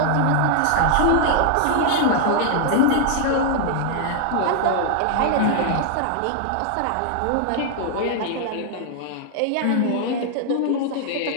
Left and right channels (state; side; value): different; both; correlation -0.01